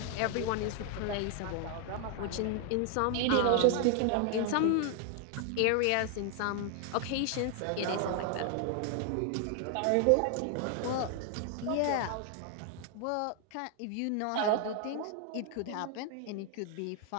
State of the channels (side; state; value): both; different; correlation 0.00